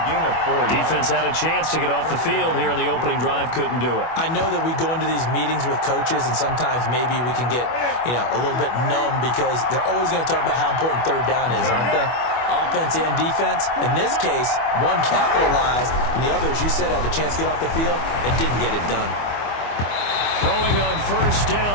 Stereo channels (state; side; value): late; right; 25 ms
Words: gain of 4. Defense had a chance to get off the field here in the opening drive. Couldn't do it. I know that we go into these meetings with coaches, and sometimes maybe we can get, a little bit numb because they're always going to talk about how important 3rd down is, aren't they? Offense and defense. In this case, one capitalized, and the other, as you said, had a chance to get off the field and didn't get it done. Throwing on first